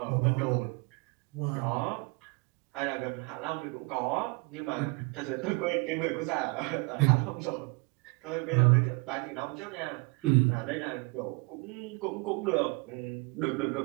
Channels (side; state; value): left; quieter; 28.4 dB